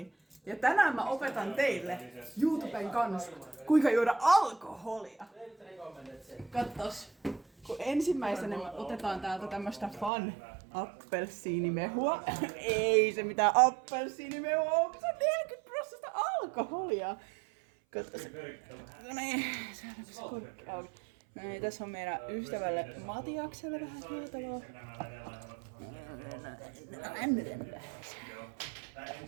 Ja tänään mä opetan teille YouTuben kanssa, kuinka juoda alkoholia. Katsos. Kun ensimmäisenä me otetaan täältä tämmöstä Fun appelsiinimehua. Ei se mitään appelsiinimehua on, se on 40% alkoholia. Katsos. No niin, saadaanko se korkki auki. No niin, tässä on meidän ystävälle Matiakselle vähän juotavaa.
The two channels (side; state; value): left; drops out; at 10.1 s